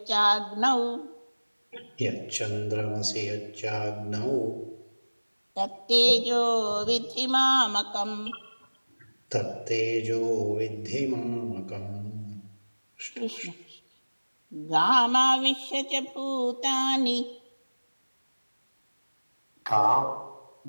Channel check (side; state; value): both; inverted; correlation -1.00